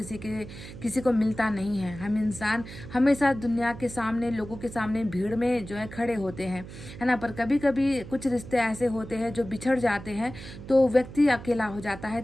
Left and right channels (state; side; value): noise; right; hum, 13 dB below the sound